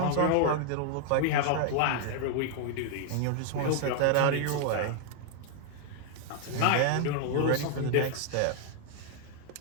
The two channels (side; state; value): both; different; correlation 0.00